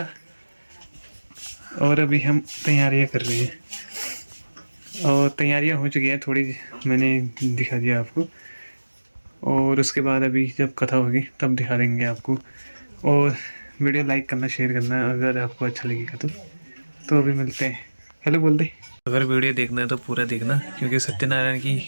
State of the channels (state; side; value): inverted; both; correlation -1.00